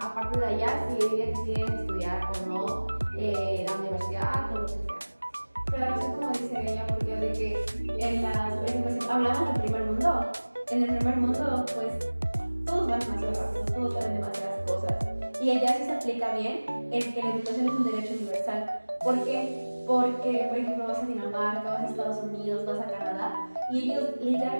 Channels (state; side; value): inverted; both; correlation -1.00